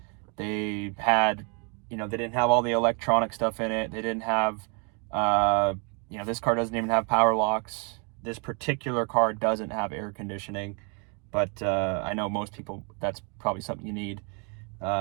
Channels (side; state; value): left; quieter; 35.7 dB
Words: They had, they didn't have all the electronic stuff in it. They didn't have, this car doesn't even have power locks. This particular car doesn't have air conditioning, but I know most people, that's probably something you need.